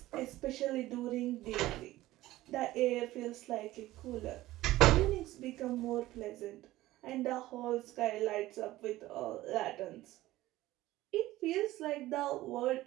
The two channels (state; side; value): quieter; left; 16.6 dB